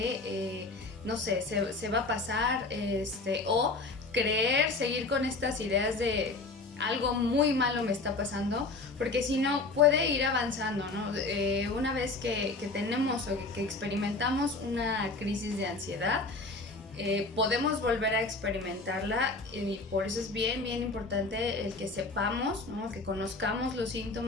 no sé, se va a pasar, o seguir con estas ideas de algo muy malo me está pasando, porque si no puede ir avanzando, ¿no? Una vez que tenemos o que experimentamos una crisis de ansiedad, podemos volver a experimentarla, y por eso es bien importante el que sepamos, ¿no? Que conozcamos los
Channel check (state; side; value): quieter; right; 3.5 dB